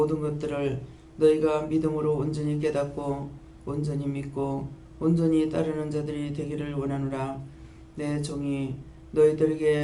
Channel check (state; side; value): identical; both; correlation 1.00